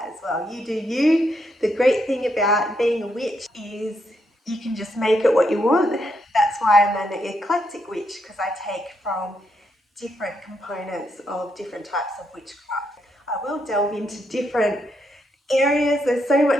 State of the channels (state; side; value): normal; both; correlation 0.78